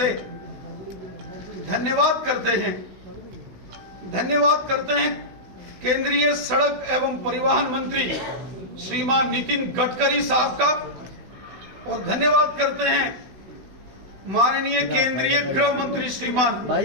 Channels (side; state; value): left; late; 16 ms